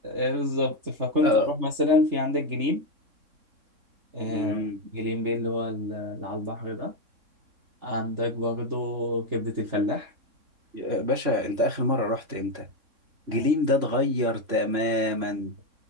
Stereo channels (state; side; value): late; left; 3.6 ms